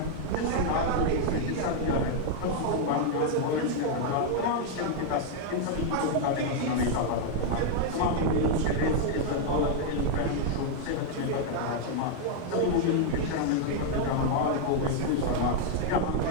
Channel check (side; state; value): both; different; correlation 0.00